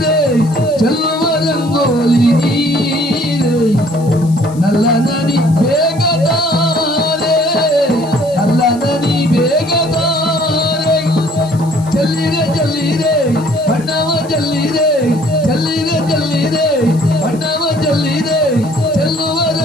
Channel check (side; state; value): left; noise; hiss, 22 dB below the sound